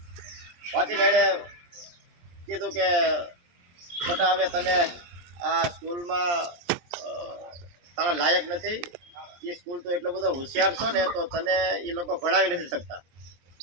એણે કીધું કે બટા હવે તને આ સ્કૂલમાં તારા લાયક નથી, એ સ્કૂલ તો એટલો બધો હોશિયાર છો ને તો તને એ લોકો ભણાવી નથી શકતા,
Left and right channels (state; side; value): late; left; 23 ms